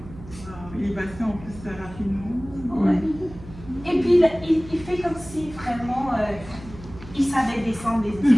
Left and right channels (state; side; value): noise; right; hum, 16 dB below the sound